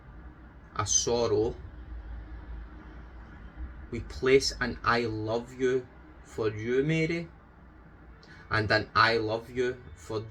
a sorrow, we place an I love you for you, Mary, and an I love you for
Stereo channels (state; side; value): identical; both; correlation 1.00